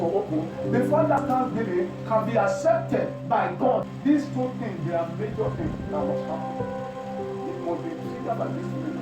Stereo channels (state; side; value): identical; both; correlation 1.00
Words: open, before that thanksgiving can be accepted by God, these two things, they are major things that must happen. It must be triggered by these